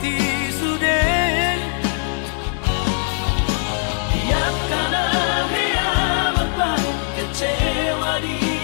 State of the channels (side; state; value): right; silent; digital silence